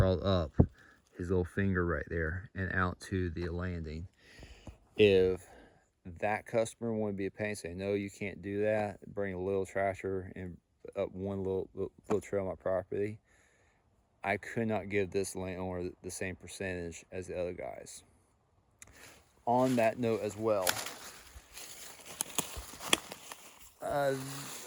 up his little finger right there and out to the landing. If that customer wanted to be a pain, say, no, you can't do that, bring a little tractor and up one little trail on my property, I could not give this landowner the same percentage as the other guys. On that note as well, a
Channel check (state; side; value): identical; both; correlation 1.00